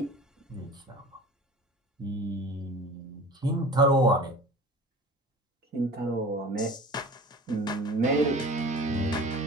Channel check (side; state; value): both; normal; correlation 0.39